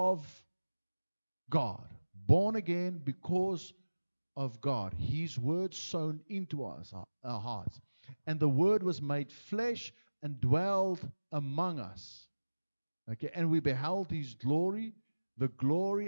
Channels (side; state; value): both; inverted; correlation -1.00